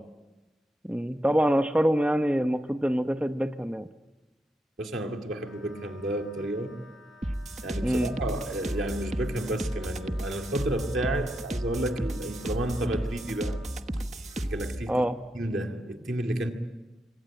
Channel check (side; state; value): both; normal; correlation 0.84